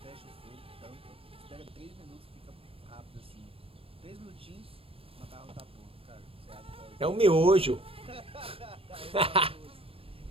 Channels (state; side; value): late; left; 0.27 ms